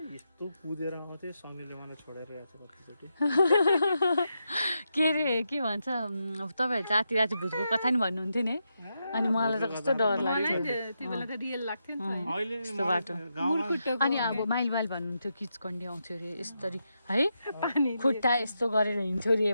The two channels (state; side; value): inverted; both; correlation -0.85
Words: यस्तो कुदेर आउँथ्यो समीले मलाई छोडेर आएको छ कतिचोटि के अरे के भन्छ तपाईँहरू जाति राति भूतको कथा नि भन्नुहुन्थ्यो नि अनि मलाई त कस्तो डर लाग्थ्यो यस्तो बाटो अनि अब माइल भन्नुहुन्थ्यो किचकन्डी आउँथ्यो अरे यस्तरी है खुट्टा यस्तो गरेर हिँड्थ्यो अरे